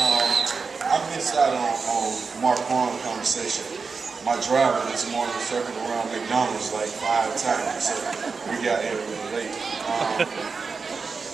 I missed out on Mark Warren's conversation. My driver this morning circled around McDonald's like 5 times, so we got here a little late.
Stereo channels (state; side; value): quieter; left; 4.9 dB